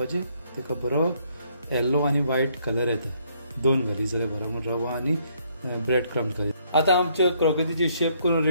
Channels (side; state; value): both; inverted; correlation -0.69